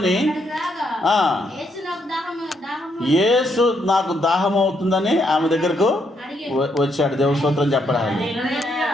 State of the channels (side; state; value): both; normal; correlation 0.76